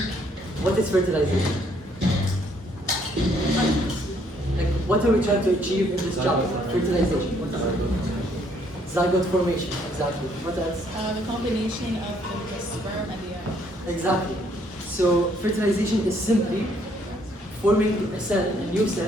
what is fertilization? Like, what are we trying to achieve in this chapter? Fertilization. Zygote formation, exactly. What else? The combination of the sperm and the egg. Exactly. So, fertilization is simply forming a cell, a new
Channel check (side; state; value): both; normal; correlation 0.67